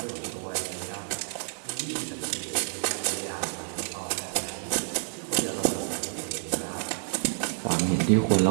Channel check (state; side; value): silent; left; digital silence